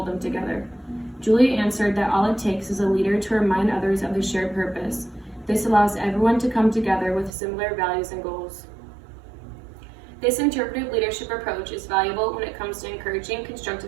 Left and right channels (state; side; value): drops out; left; at 7.3 s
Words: them together? Julia answered that all it takes is a leader to remind others of the shared purpose. This allows everyone to come together with similar values and goals. This interpretive leadership approach is valuable when it comes to encouraging